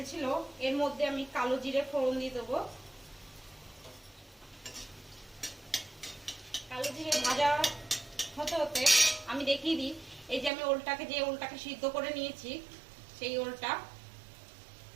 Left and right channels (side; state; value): left; drops out; at 10.5 s